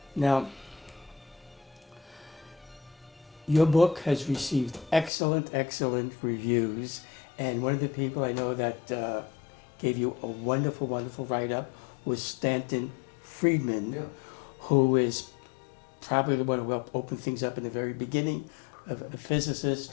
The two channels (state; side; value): drops out; right; at 5.1 s